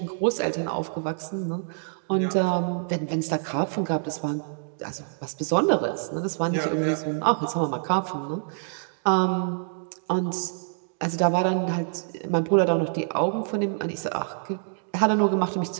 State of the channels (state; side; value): silent; left; digital silence